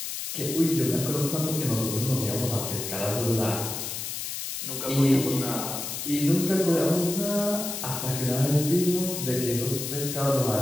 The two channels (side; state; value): left; noise; hiss, 5 dB below the sound